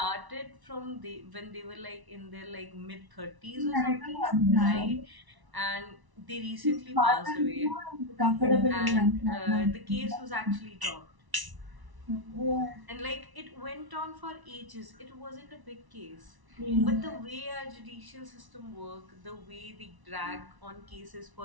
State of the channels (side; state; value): left; late; 1.0 ms